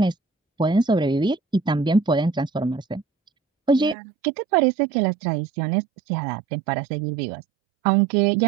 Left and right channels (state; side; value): drops out; left; at 4.0 s